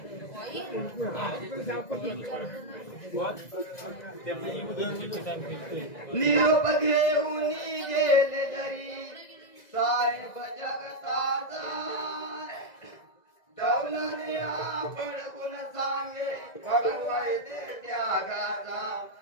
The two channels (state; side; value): late; right; 2.0 ms